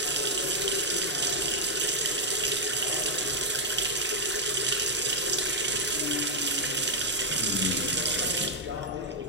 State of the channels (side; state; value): both; normal; correlation -0.01